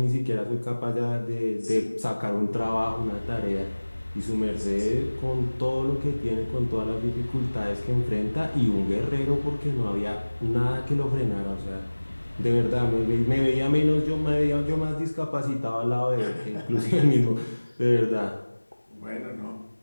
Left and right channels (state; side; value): inverted; both; correlation -1.00